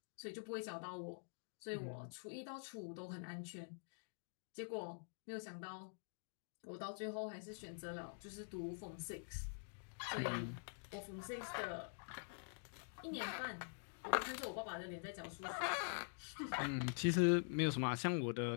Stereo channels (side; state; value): right; silent; digital silence